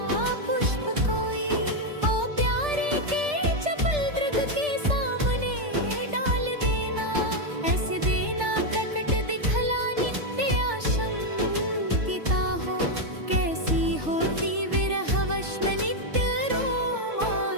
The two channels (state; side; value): late; left; 3.4 ms